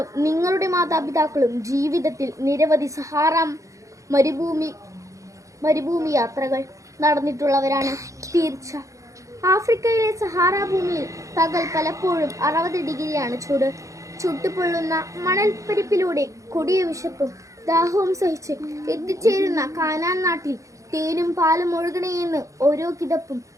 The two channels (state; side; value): late; left; 0.15 ms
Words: നിങ്ങളുടെ മാതാപിതാക്കളും ജീവിതത്തിൽ നിരവധി സഹാറ മരുഭൂമി യാത്രകൾ നടന്നിട്ടുള്ളവരാണ്. തീർച്ച. ആഫ്രിക്കയിലെ സഹാറ ഭൂമിയിൽ പകൽ പലപ്പോഴും 60 ഡിഗ്രിയാണ് ചൂട്. ചുട്ടുപൊള്ളുന്ന മണൽപ്പരിപ്പിലൂടെ കൊടിയ വിശപ്പും ദാഹവും സഹിച്ച് എത്തിച്ചേരുന്ന കാനാൻ നാട്ടിൽ തേനും പാലും ഒഴുകണേയെന്ന് ഓരോ കിതപ്പും